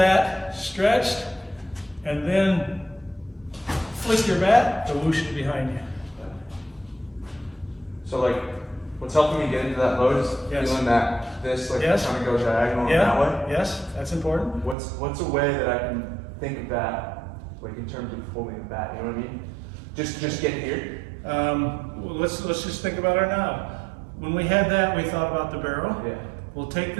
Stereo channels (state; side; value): drops out; left; at 14.8 s